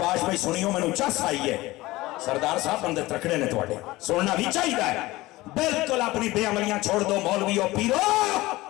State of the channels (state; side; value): quieter; right; 19.1 dB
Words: بھائی سنیوں میں نو چس آئی ہے سردار صاحب بندے ترکڑے نے توڑے سننا بھی چاہیے ہے بلکل اپنی بے عملیاں چھوڑ دو مولوی اور پیرو